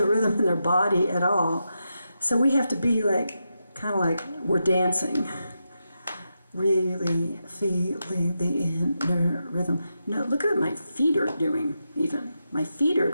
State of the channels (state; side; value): inverted; both; correlation -0.87